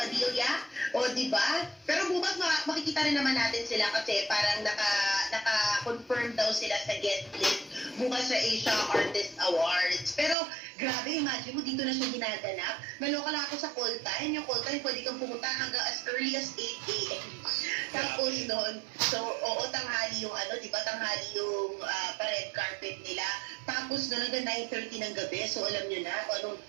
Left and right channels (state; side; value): drops out; left; at 10.4 s